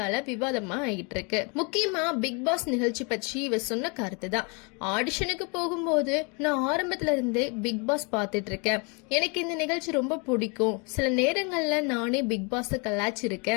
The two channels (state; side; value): quieter; right; 32.7 dB